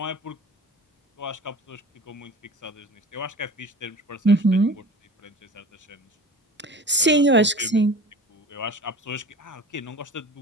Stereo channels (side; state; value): both; normal; correlation 0.39